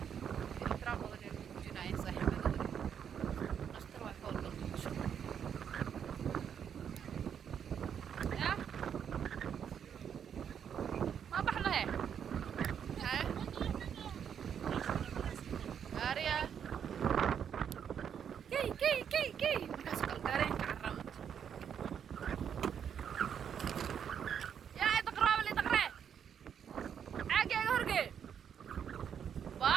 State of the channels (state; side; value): quieter; left; 8.2 dB